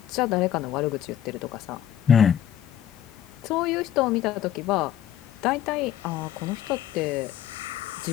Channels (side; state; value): right; quieter; 10.6 dB